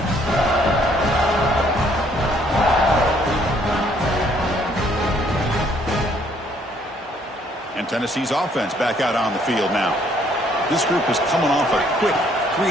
Tennessee's offense back out on the field now. This group is coming off a quick 3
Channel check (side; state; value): both; normal; correlation 0.65